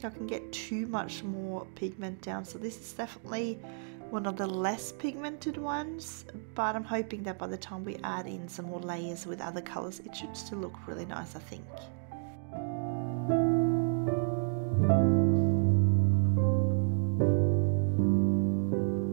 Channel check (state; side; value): silent; left; 57 dB below the other